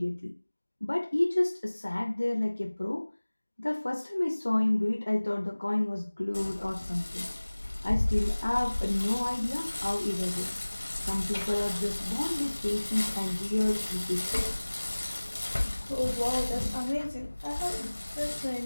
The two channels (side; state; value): both; inverted; correlation -1.00